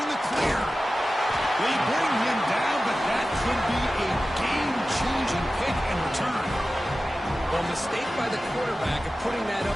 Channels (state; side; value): normal; both; correlation 0.95